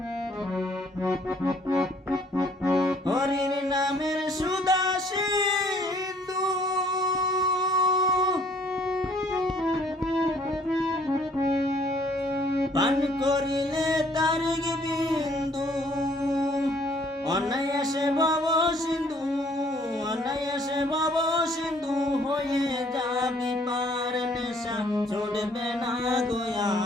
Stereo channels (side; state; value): both; normal; correlation 0.60